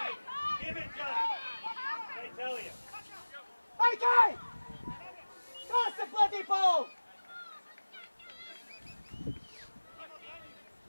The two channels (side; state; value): both; inverted; correlation -1.00